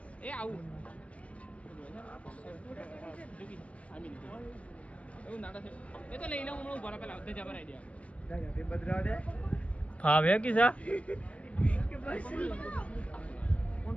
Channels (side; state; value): right; late; 0.064 ms